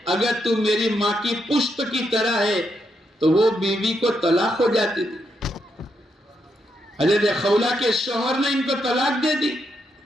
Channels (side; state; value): both; normal; correlation 0.80